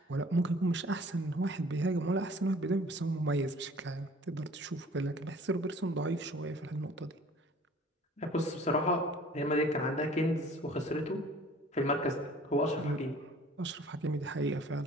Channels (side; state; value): both; normal; correlation 0.51